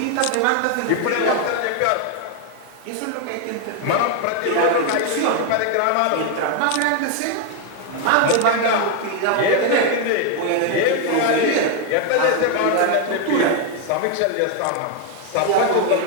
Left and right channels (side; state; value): both; different; correlation 0.00